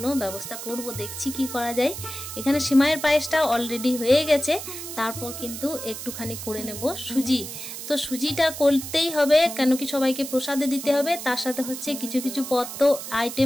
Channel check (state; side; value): noise; right; hiss, 9 dB below the sound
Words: ব্যবস্থা করব, দেখছি কি করা যায়। এখানে সিমাইয়ের পায়েসটা অলরেডি হয়ে গেছে, তারপর কিন্তু একটুখানি করে নেব সুজি। তো সুজিটা করতেই হবে, কেন কি সবাইকে প্রসাদে দিতে হবে, তার সাথে হচ্ছে কিছু কিছু পদ তো